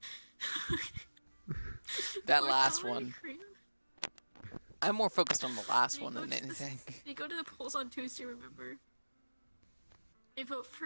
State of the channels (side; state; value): both; inverted; correlation -1.00